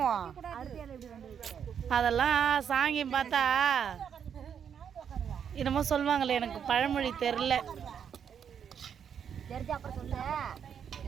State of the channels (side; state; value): left; quieter; 7.9 dB